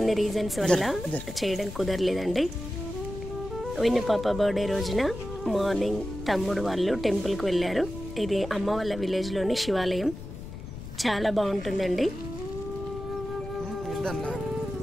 రీజన్స్ వల్ల చేయడం కుదరలేదండి. విన్ను పాప బర్త్డే రోజున మార్నింగ్ తమ్ముడు వాళ్ళు టెంపుల్కి వెళ్ళారు. ఇది అమ్మ వాళ్ళ విలేజ్లోని శివాలయం. చాలా బాగుంటుందండి.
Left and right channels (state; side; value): noise; left; rumble, 10 dB below the sound